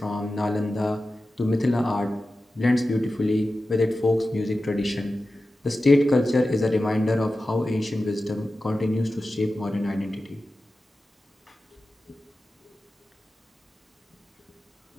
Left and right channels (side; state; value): both; normal; correlation 0.94